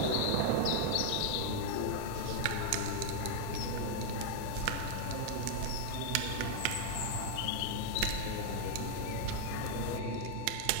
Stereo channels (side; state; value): both; different; correlation 0.00